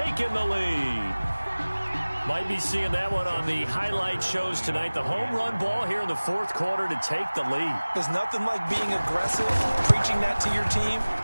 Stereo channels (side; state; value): both; inverted; correlation -1.00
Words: the lead. Might be seeing that one on the highlight shows tonight. The home run ball here in the fourth quarter to take the lead. There's nothing like being aggressive, preaching that to your team,